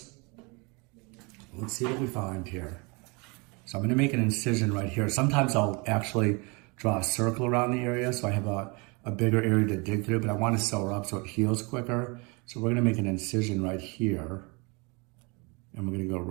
Let's see what we find here. So I'm going to make an incision right here. Sometimes I'll actually draw a circle around the area so I have a bigger area to dig through, but I want to sew her up so it heals quicker. So we're going to make an incision right here. And we're going to go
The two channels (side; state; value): left; quieter; 29.5 dB